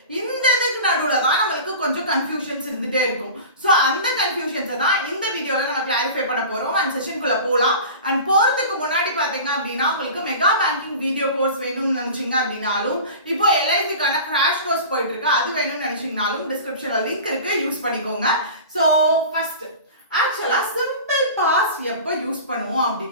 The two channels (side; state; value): both; inverted; correlation -0.36